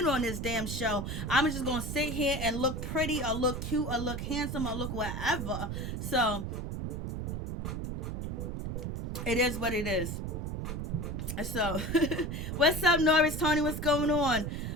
on this damn show. I'm just gonna sit here and look pretty, or look cute, or look handsome, or look whatever. So it is what it is. So what's up, Norris? Tony, what's going on?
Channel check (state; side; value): noise; right; rumble, 4 dB below the sound